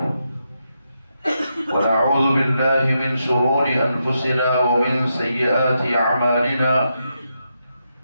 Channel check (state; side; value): inverted; both; correlation -0.83